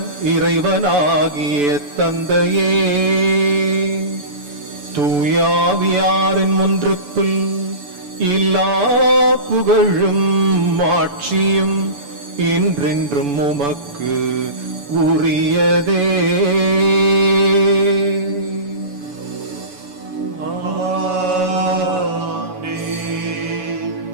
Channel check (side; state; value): left; late; 7.0 ms